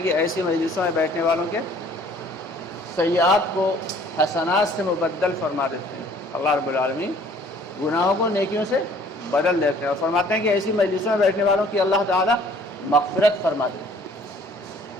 کہ ایسی مجلسوں میں بیٹھنے والوں کے سیئات کو حسنات سے مبدل فرما دیتے ہیں۔ اللہ رب العالمین گناہوں کو نیکیوں سے بدل دیتے ہیں، اور فرماتے ہیں کہ ایسی مجلسوں میں بیٹھنے والوں کی اللہ تعالیٰ مغفرت فرما دیتے ہیں۔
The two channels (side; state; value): both; normal; correlation 0.56